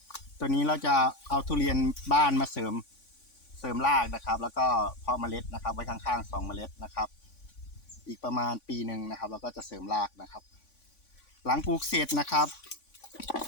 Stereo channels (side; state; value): right; late; 3.5 ms